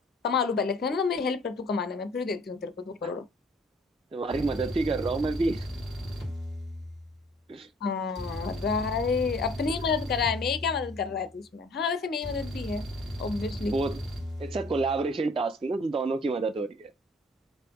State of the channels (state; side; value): normal; both; correlation 0.55